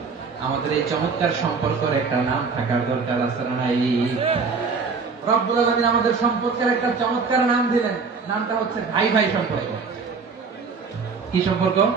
আমাদের এই চমৎকার সম্পর্কের একটা নাম থাকার দরকার আছে না? রব্বুল আলামিন আমাদের সম্পর্কের একটা চমৎকার নাম দিলেন। নামটা হচ্ছে ভাই ভাই সম্পর্ক। কি সম্পর্ক?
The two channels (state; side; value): quieter; left; 4.9 dB